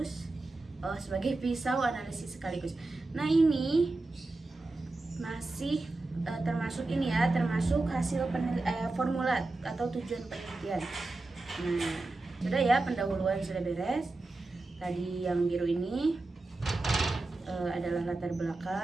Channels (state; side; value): quieter; left; 3.1 dB